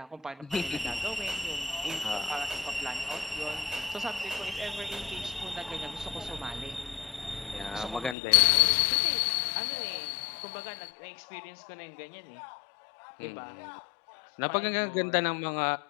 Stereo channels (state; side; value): drops out; right; at 8.2 s